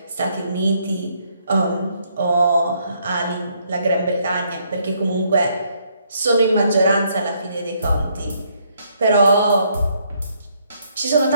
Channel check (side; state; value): both; inverted; correlation -0.71